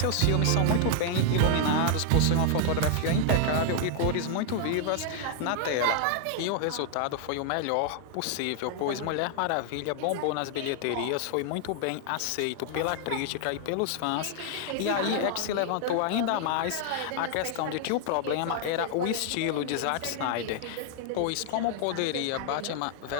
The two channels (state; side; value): different; both; correlation 0.00